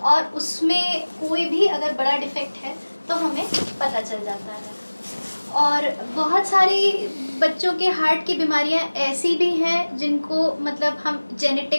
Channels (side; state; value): both; inverted; correlation -1.00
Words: उसमें कोई भी अगर बड़ा डिफेक्ट है तो हमें पता चल जाता है। और बहुत सारी बच्चों के हार्ट की बीमारियां ऐसी भी हैं जिनको मतलब हम